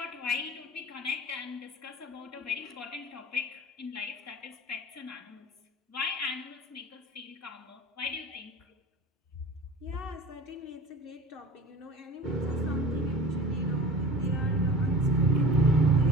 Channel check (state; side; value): normal; both; correlation 0.39